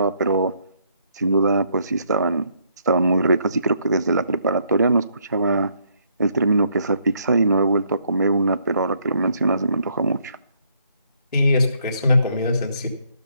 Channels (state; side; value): inverted; both; correlation -0.70